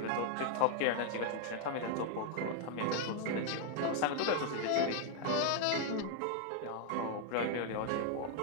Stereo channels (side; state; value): both; different; correlation 0.00